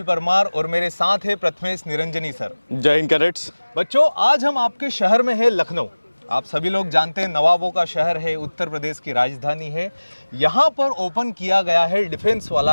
Parmar और मेरे साथ है प्रथमेश निरंजनी सर। जय हिंद कैडेट्स। बच्चों, आज हम आपके शहर में है लखनऊ। आप सभी लोग जानते हैं नवाबों का शहर है, उत्तर प्रदेश की राजधानी है। यहाँ पर ओपन किया गया है डिफेंस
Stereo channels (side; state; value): both; inverted; correlation -1.00